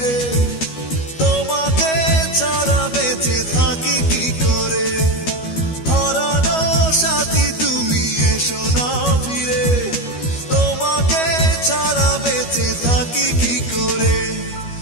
তোমাকে ছাড়া বেঁচে থাকি কি করে হারানো সাথী তুমি এসো না ফিরে তোমাকে ছাড়া বেঁচে থাকি কি করে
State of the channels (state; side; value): late; right; 12 ms